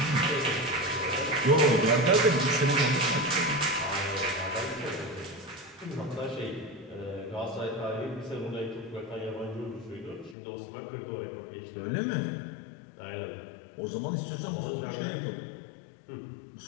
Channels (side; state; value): right; drops out; at 10.4 s